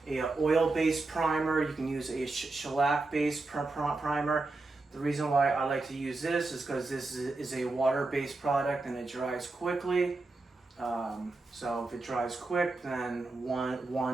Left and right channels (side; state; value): left; quieter; 3.3 dB